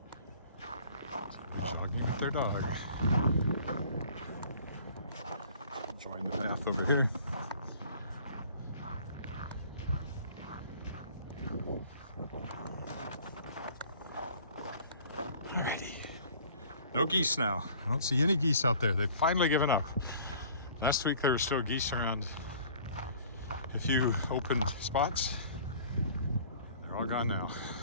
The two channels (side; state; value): both; inverted; correlation -0.50